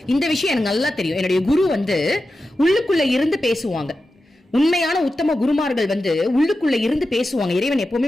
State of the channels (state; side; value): normal; both; correlation 0.92